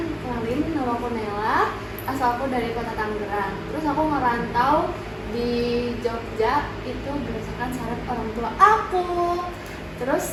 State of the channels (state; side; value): identical; both; correlation 1.00